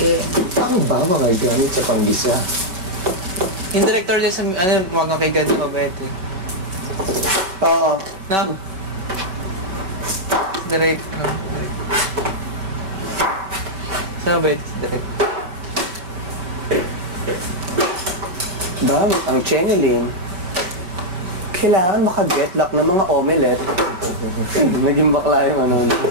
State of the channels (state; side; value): late; left; 5.3 ms